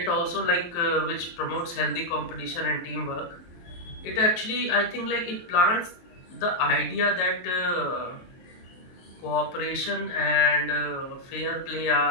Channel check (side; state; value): right; late; 23 ms